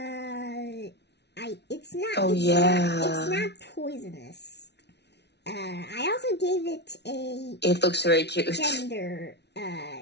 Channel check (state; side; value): late; right; 0.50 ms